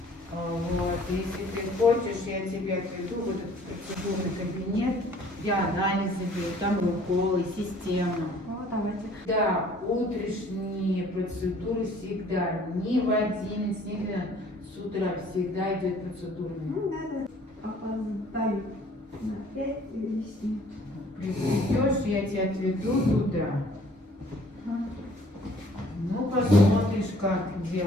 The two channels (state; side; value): normal; both; correlation 0.56